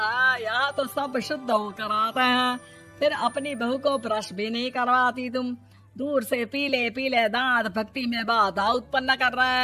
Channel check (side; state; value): both; identical; correlation 1.00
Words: यहाँ तो सब शुद्ध होकर आते हैं, फिर अपनी बहू को ब्रश भी नहीं करवाती तुम। दूर से पीले पीले दांत भक्ति में बाधा उत्पन्न कर रहे